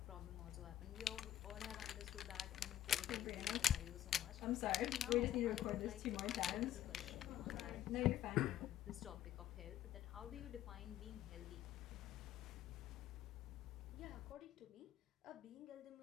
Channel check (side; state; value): right; quieter; 12.2 dB